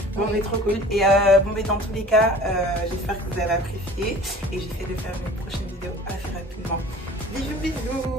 Bon, mais trop cool. Et bon, mais dans tous les cas, j'espère que vous avez apprécié. Et j'essaie de faire une prochaine vidéo assez rapidement. Bisous,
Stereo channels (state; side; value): normal; both; correlation 0.45